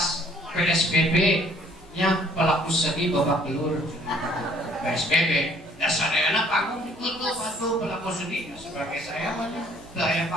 PSBB nya pelaku seni babak belur PSBB. Dasar ayana panggung ditutup atau pelaku seni sebagai saya mana gaya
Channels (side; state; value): both; normal; correlation 0.60